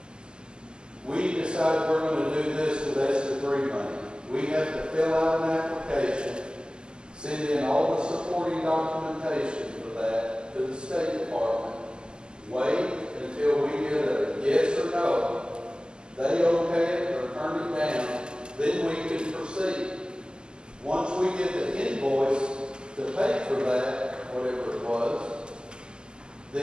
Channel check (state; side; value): late; left; 0.047 ms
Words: we decided we're going to do this with ESSER 3 money. We have to fill out an application, send in all the supporting documentation for that to the State Department, wait until we get a yes or no. They okay it or turn it down, then we can proceed. Once we get the invoice to pay for that, whatever it was,